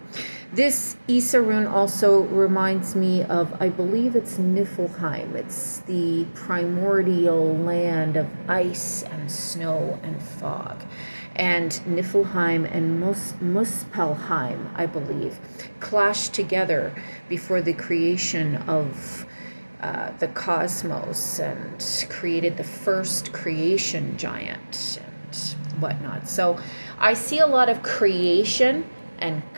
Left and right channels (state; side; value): inverted; both; correlation -1.00